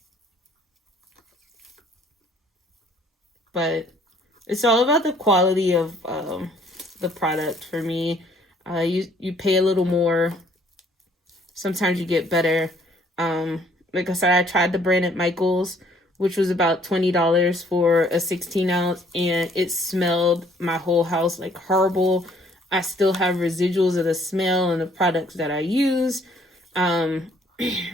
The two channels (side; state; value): both; normal; correlation 0.61